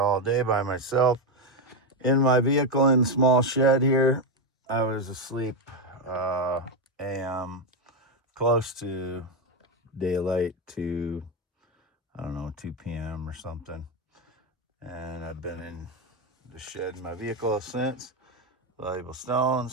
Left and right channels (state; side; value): normal; both; correlation 0.07